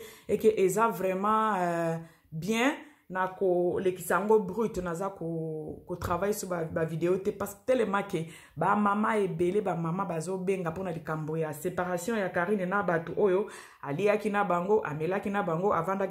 et que eza vraiment bien na ko lekisango brut naza ko travail sur ba vidéo te parce que tellement que ba mama ebele ba mama bazo benga pona likambo ya séparation ya Karine na batu oyo aliaki na bango amelaki na bango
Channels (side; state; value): both; identical; correlation 1.00